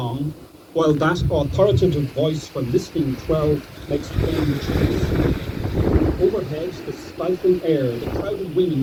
while that authoritative voice from listening 12 makes plain choice. Overhead, the stifling air, the crowded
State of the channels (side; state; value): both; identical; correlation 1.00